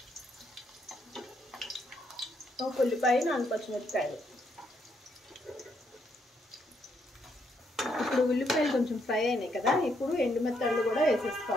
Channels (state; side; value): normal; both; correlation 0.75